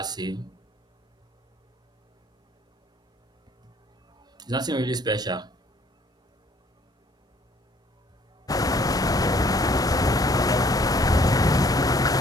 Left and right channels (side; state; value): both; normal; correlation 0.60